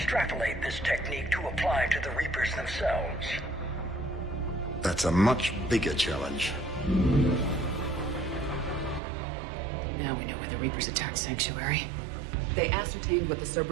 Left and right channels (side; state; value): left; drops out; at 9.0 s